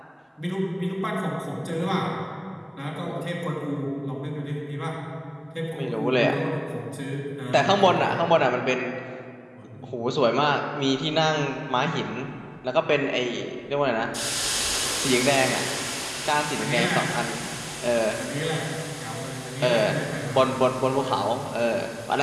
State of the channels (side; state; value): both; identical; correlation 1.00